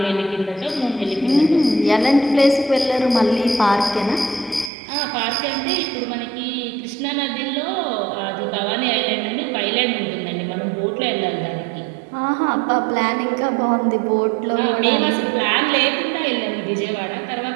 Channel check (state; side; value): drops out; left; at 4.7 s